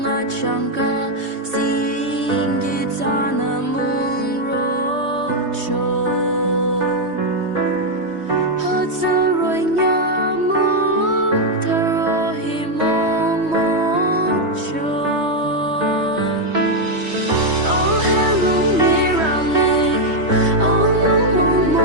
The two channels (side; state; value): left; late; 3.2 ms